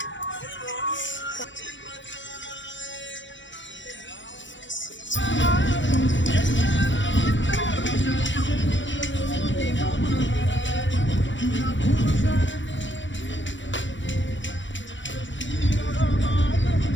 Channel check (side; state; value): right; late; 0.54 ms